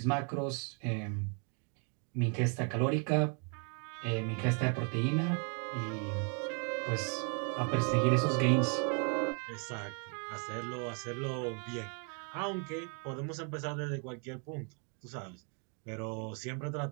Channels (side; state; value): left; quieter; 38.9 dB